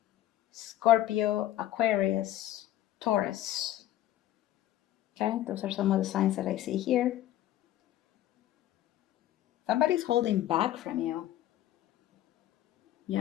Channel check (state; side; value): quieter; right; 13.3 dB